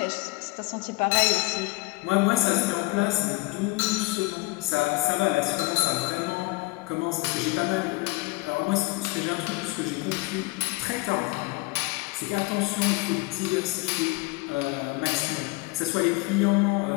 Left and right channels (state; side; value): quieter; right; 24.1 dB